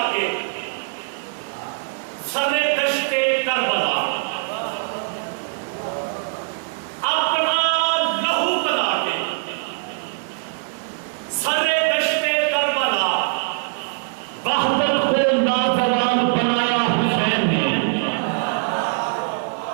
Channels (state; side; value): silent; left; digital silence